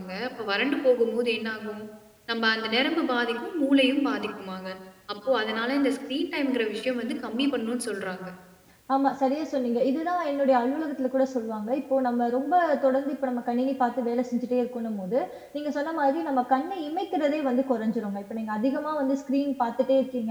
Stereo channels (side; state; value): both; identical; correlation 1.00